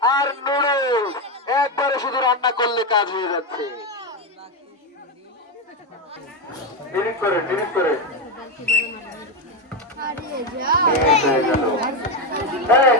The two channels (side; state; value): both; normal; correlation 0.09